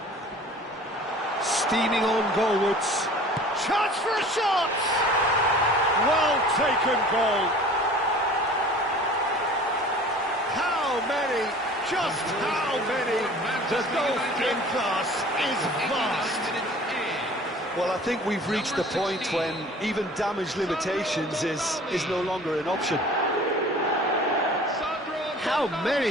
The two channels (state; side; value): normal; both; correlation 0.45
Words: Steaming on goalwards. Chance for a shot! Well taken goal. How many? Just how many? The goal-in class is vast. Well, I think we've reached the point when even damage limitations is no longer an option. How